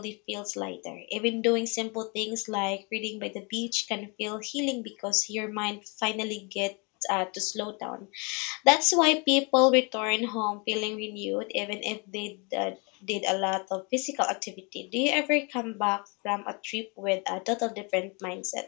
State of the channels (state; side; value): quieter; right; 31.3 dB